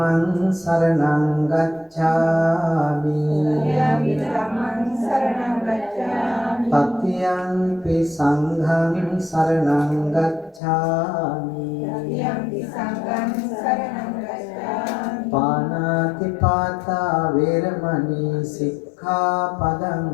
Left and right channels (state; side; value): drops out; right; at 10.6 s